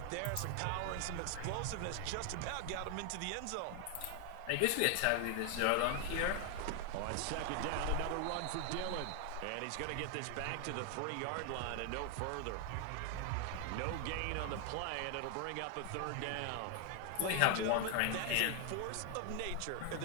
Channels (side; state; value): both; different; correlation 0.01